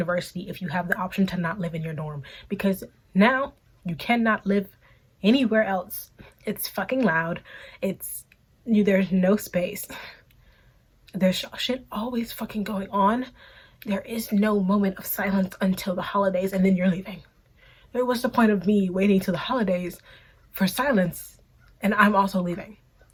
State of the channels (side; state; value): both; identical; correlation 1.00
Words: if you have the option to not live in your dorm, because now you cannot live anywhere else. It's fucking loud. There's no space. There's shit always fucking going on. There is no moment of silence until the holidays, and then you're leaving. What's the point of me waiting till the holidays for silence and I'm also leaving?